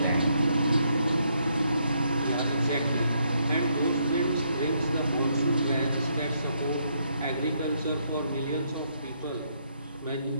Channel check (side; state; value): both; inverted; correlation -0.74